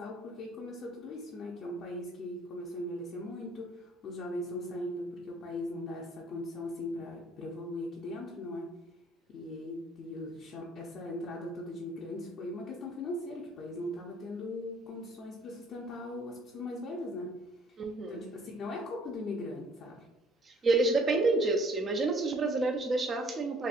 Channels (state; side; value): normal; both; correlation 0.58